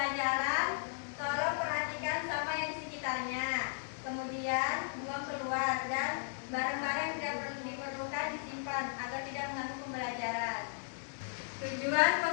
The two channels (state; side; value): silent; right; digital silence